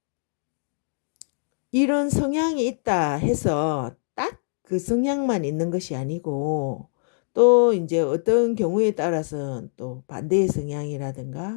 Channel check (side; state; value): right; silent; digital silence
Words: 이런 성향이 있다 해서 딱 그 성향만 있는 것이 아니고 또 이제 어떤 경우에 따라서는 또 반대의